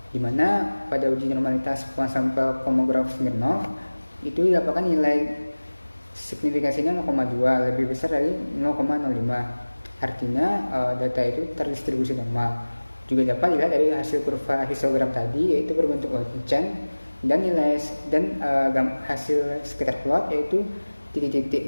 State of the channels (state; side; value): inverted; both; correlation -1.00